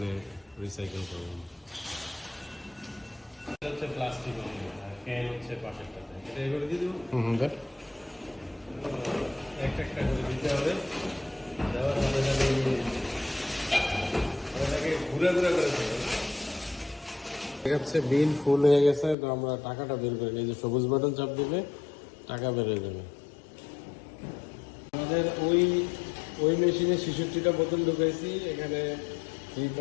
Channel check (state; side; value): drops out; right; at 19.2 s